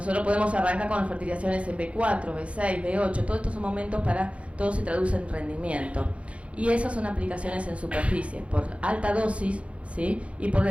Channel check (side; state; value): left; late; 0.062 ms